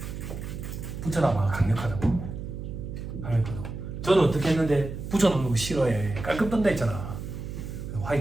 붙여놔봐. 강력하다고. 강력하다고. 저는 어떻게 했는데 붙여놓는 거 싫어해. 깔끔 뜬다 했잖아.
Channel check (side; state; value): right; noise; hum, 8 dB below the sound